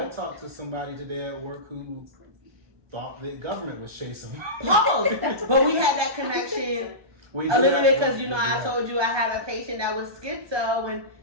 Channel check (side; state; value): left; late; 1.2 ms